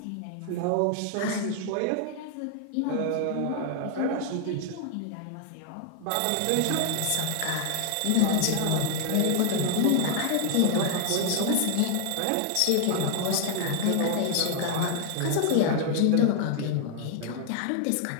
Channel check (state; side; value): different; both; correlation 0.00